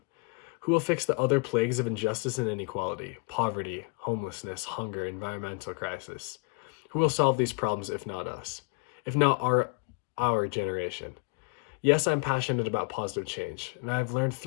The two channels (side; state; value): right; quieter; 32.9 dB